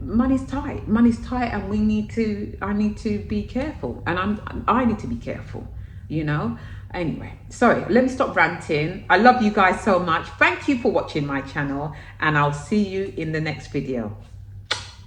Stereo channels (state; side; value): identical; both; correlation 1.00